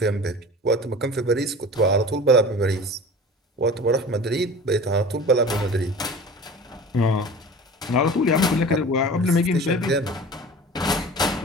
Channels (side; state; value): both; normal; correlation 0.39